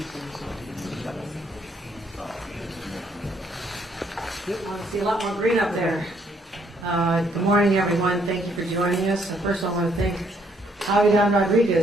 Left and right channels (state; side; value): normal; both; correlation 0.69